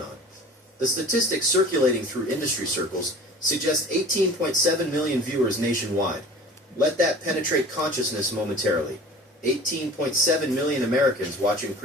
The statistics circulating through industry circles suggest 18.7 million viewers nationwide. Let that penetrate consciousness momentarily. 18.7 million Americans watching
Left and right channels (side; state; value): both; normal; correlation 0.42